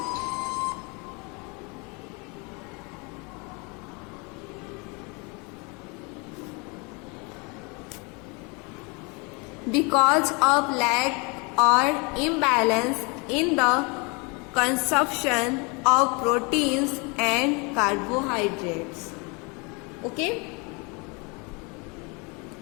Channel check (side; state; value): right; quieter; 30.2 dB